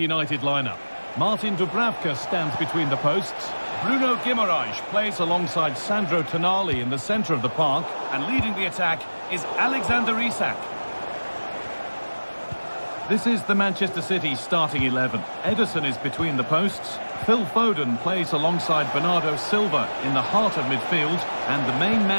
lineup. Martin Dubravka stands between the posts. Bruno Guimaraes plays alongside Sandro Tonali in the centre of the park. And leading the attack is Alexander Isak. This is the Manchester City starting 11. Ederson is between the posts. Phil Foden plays alongside Bernardo Silva in the heart of midfield. And the main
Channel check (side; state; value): both; inverted; correlation -1.00